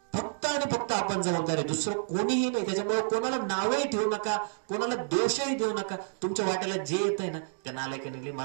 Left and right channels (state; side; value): silent; left; digital silence